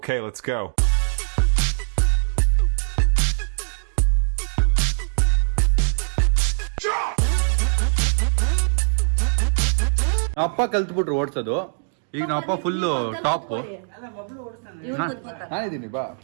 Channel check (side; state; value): left; silent; digital silence